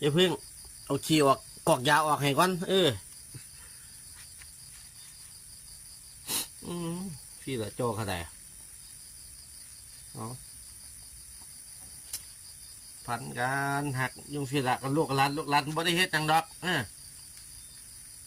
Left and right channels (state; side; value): identical; both; correlation 1.00